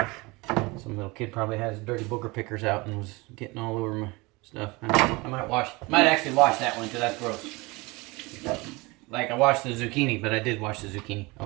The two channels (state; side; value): quieter; left; 24.3 dB